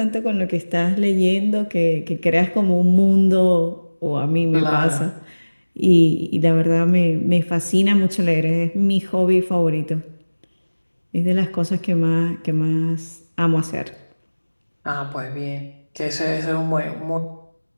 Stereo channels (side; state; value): both; inverted; correlation -1.00